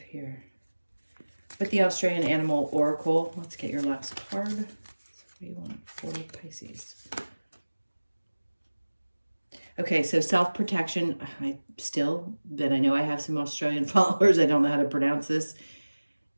here. With the Australian Animal Oracle, let's get your last card. So what do you want for Pisces? Okay, so self-protection. But I know I have some Australian followers. I don't know how to pronounce this.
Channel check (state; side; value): inverted; both; correlation -1.00